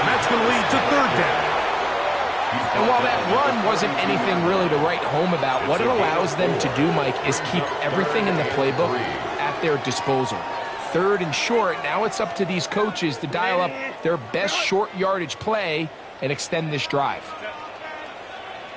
that's going to lead to 3rd down. And while that run wasn't anything really to write home about, what it allows them to do, Mike, is keep everything in the playbook at their disposal. 3rd and short, now it's up to these coaches to dial up their best short yardage play and extend this drive.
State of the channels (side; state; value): both; identical; correlation 1.00